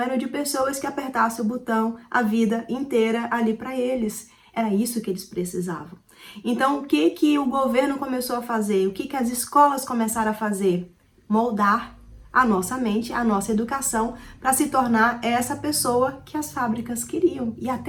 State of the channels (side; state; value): both; identical; correlation 1.00